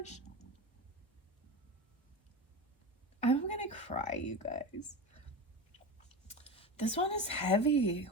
I'm going to cry, you guys. This one is heavy.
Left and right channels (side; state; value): both; normal; correlation 0.24